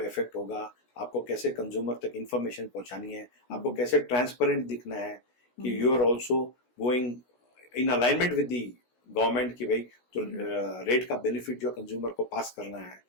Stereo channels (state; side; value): late; right; 16 ms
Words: इफेक्ट होगा, आपको कैसे कंज्यूमर तक इंफॉर्मेशन पहुंचानी है, आपको कैसे ट्रांसपेरेंट दिखना है कि you are also going in alignment with the government, की भाई तो रेट का बेनिफिट जो कंज्यूमर को पास करना है,